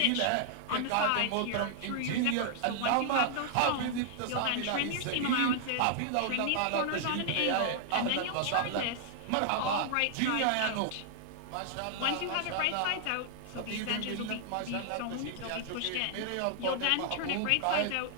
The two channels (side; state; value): both; different; correlation -0.01